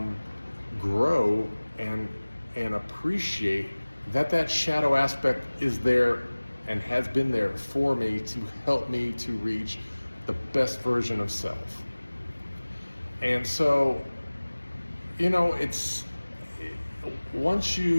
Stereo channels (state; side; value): inverted; both; correlation -1.00